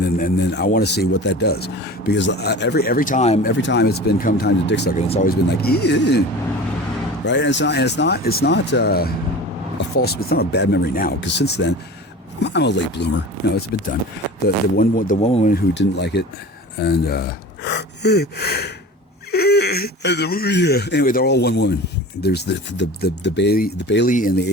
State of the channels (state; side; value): normal; both; correlation 0.37